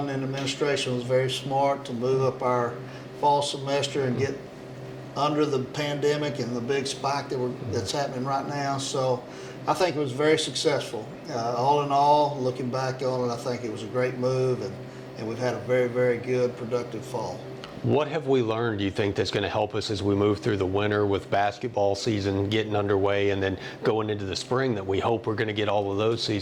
in administration was very smart to move up our fall semester and get under the pandemic and the big spike that's happening right now. So I think it was very successful. All in all, looking back on it, I think it was a great move, and we've had a very, very good, productive fall. What have we learned, do you think, that's going to help us as we move through the winter with basketball season getting underway and then going into the spring that we hope we're going to get all of those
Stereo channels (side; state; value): both; identical; correlation 1.00